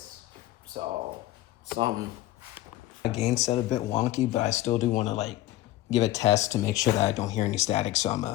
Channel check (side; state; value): right; quieter; 15.4 dB